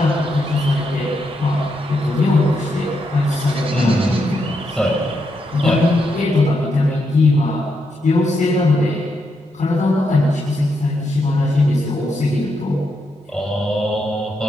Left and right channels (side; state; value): both; normal; correlation 0.81